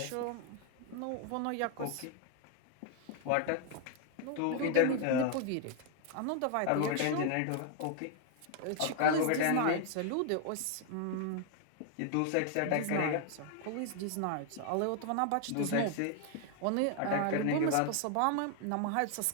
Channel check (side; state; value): both; different; correlation 0.00